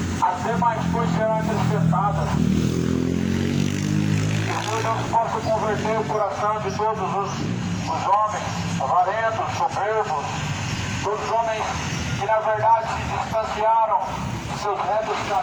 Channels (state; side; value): identical; both; correlation 1.00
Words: as demais coisas serão acrescentadas. Que o Senhor Deus possa converter o coração de todos os homens avarentos, soberbos, todos os homens que na verdade se distanciaram de seus retos